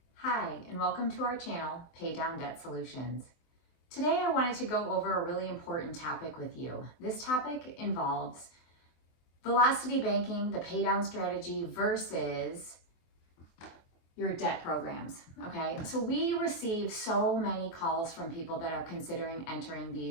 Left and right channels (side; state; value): right; late; 24 ms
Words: Hi, and welcome to our channel, Pay Down Debt Solutions. Today I wanted to go over a really important topic with you. This topic involves velocity banking, the pay down strategy versus your debt programs, okay? So we receive so many calls from people that are considering entering